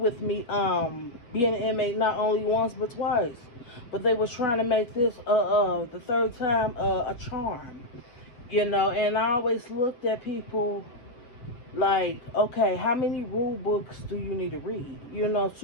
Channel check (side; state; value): right; late; 8.1 ms